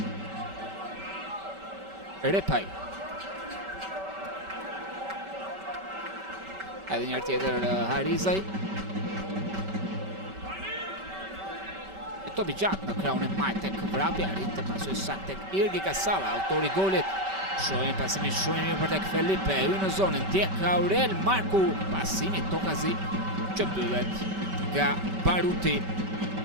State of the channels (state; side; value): late; left; 5.2 ms